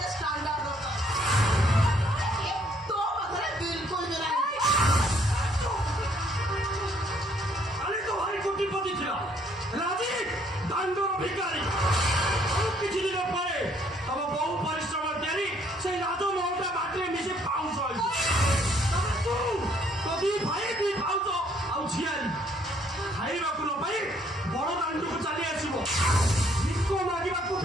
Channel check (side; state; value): both; normal; correlation 0.65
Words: स्टैंडर्ड होता तो बकरे बिल्कुल भी नहीं କାଲି ତ ଭାରି କୋଟିପତି ଥିଲା ରାଜି ଦାଣ୍ଡର ଭିକାରୀ ଆଉ କିଛି ଦିନ ପରେ ତମ ବହୁ ପରିଶ୍ରମ ତିଆରି ସେଇ ରାଜମହଲଟା ମାଟିରେ ମିଶି ପାଉଁଶ ହେଇଛି ତାପରେ ତୁ ତୋ ଦି ଭାଇ ଦି ପାଉଁଶ ଆଉ ଝିଆରୀ ଖାଇବାକୁ ନ ପାଇ ବଡ ଦାଣ୍ଡକୁ ଚାଲି ଆସିବ ଭିକ ମାଗିବାକୁ